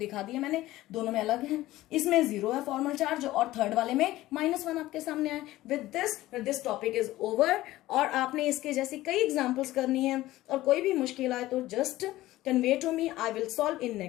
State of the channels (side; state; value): right; quieter; 16.4 dB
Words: दिया मैंने, दोनों में अलग है। इसमें 0 है फॉर्मल चार्ज और थर्ड वाले में -1 आपके सामने आए। With this topic is over. और आपने इसके जैसी कई एग्जाम्पल्स करनी है, और कोई भी मुश्किल आए तो just convey to me. I will solve in